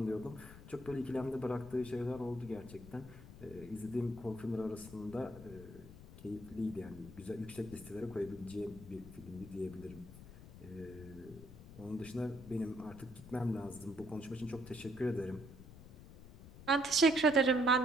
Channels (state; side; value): noise; left; rumble, 16 dB below the sound